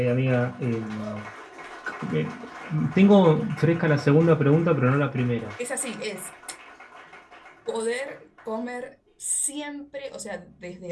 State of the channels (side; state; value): both; identical; correlation 1.00